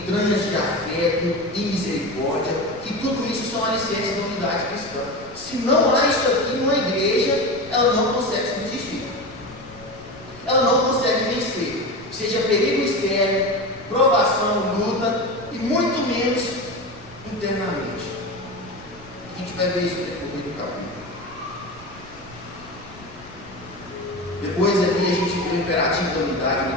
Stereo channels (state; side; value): noise; left; rumble, 21 dB below the sound